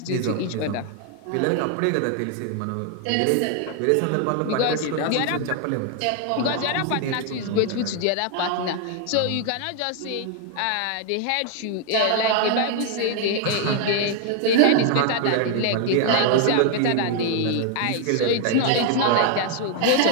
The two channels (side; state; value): both; different; correlation 0.00